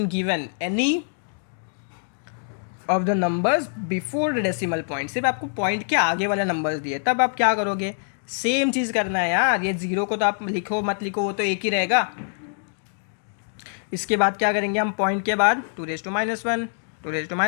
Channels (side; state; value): right; silent; digital silence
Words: given any of the numbers before the decimal point, सिर्फ आपको point के आगे वाला नंबर्स दिए, तब आप क्या करोगे, सेम चीज़ करना है यार। ये 0 को तो आप लिखो मत लिखो, वो तो एक ही रहेगा। इसके बाद क्या करेंगे हम, पॉइंट के बाद 2 raised to -1, 2 raised to